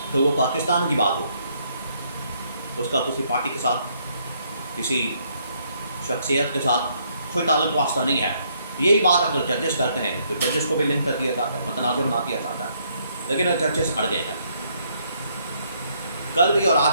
تو وہ پاکستان کی بات ہوگی، اس کا کسی پارٹی کے ساتھ، کسی شخصیت کے ساتھ کوئی تعلق واسطہ نہیں ہے۔ یہی بات اگر ججز کرتے ہیں تو ججز کو بھی لنک کر دیا جاتا ہے، متنازع بنا دیا جاتا ہے، لیکن ججز اڑ گئے ہیں۔ کل بھی اور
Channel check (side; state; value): both; inverted; correlation -0.70